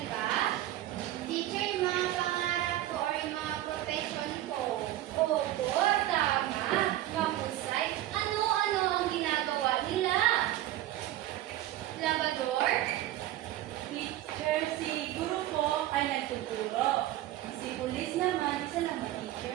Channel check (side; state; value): left; quieter; 14.3 dB